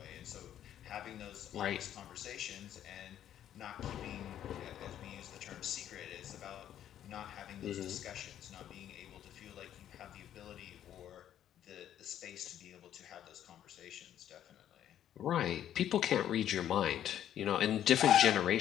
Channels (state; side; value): quieter; right; 10.8 dB